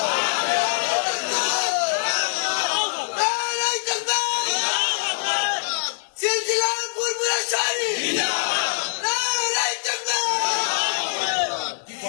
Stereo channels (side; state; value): right; silent; 63 dB below the other